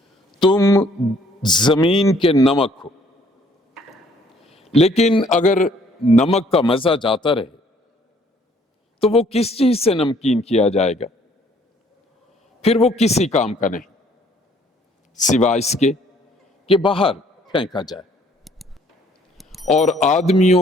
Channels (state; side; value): normal; both; correlation 0.62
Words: تم زمین کے نمک ہو، لیکن اگر نمک کا مزہ جاتا رہے تو وہ کس چیز سے نمکین کیا جائے گا؟ پھر وہ کسی کام کا نہیں سوائے اس کے کہ باہر پھینکا جائے اور آدمیوں